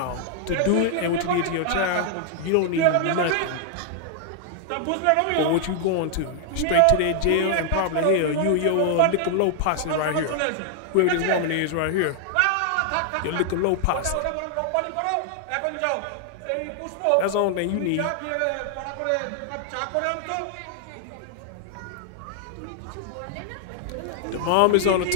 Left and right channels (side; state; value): both; different; correlation 0.00